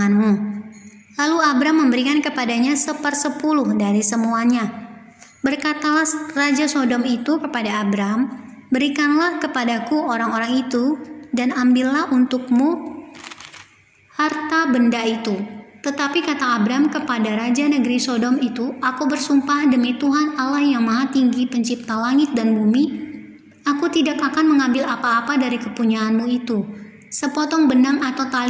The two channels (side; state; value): both; identical; correlation 1.00